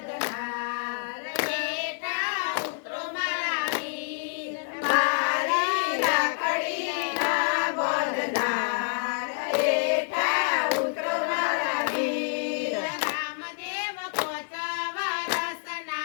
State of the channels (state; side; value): silent; right; 60 dB below the other